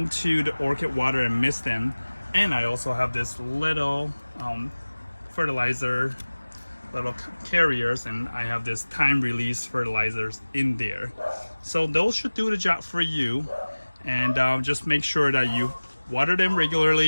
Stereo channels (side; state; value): both; inverted; correlation -1.00